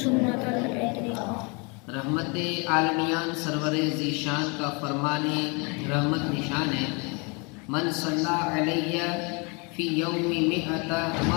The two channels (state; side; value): quieter; right; 31.2 dB